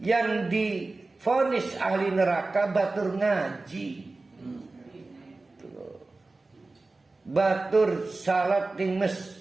yang divonis ahli neraka batur ngaji, batur salat di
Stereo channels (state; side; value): quieter; left; 3.4 dB